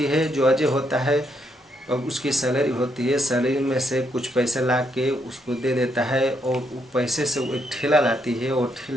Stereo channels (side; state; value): both; normal; correlation 0.76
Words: है। जो अजय होता है अब उसकी सैलरी होती है, सैलरी में से कुछ पैसे ला के उसको दे देता है और वो पैसे से वो एक ठेला लाती है और